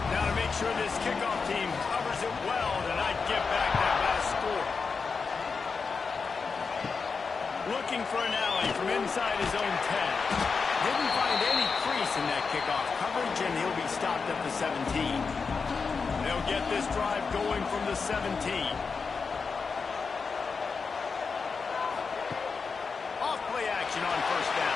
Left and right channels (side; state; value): right; quieter; 5.0 dB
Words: Now to make sure this kickoff team covers it well to not give back that last score. Looking for an alley from inside his own 10. Didn't find any crease in that kickoff coverage, and he'll be stopped at the 17. They'll get this drive going from the 17. Off play action on 1st